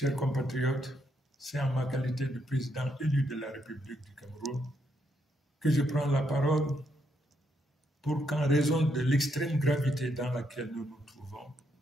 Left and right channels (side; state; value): both; normal; correlation 0.77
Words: compatriotes, c'est en ma qualité de président élu de la République du Cameroun que je prends la parole pour qu'en raison de l'extrême gravité dans laquelle nous nous trouvons,